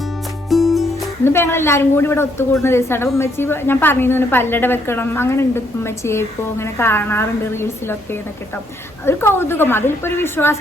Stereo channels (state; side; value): normal; both; correlation 0.71